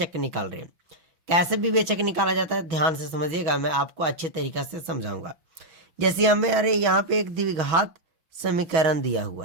निकाल रहे हैं। कैसे विवेचक निकाला जाता है ध्यान से समझिएगा, मैं आपको अच्छे तरीक़े से समझाऊंगा। जैसे हमें यहाँ पे एक द्विघात समीकरण दिया हुआ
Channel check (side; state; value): left; late; 6.4 ms